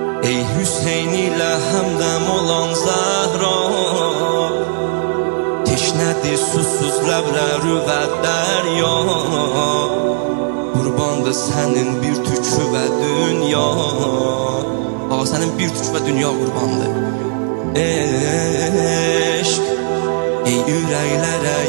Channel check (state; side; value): silent; left; digital silence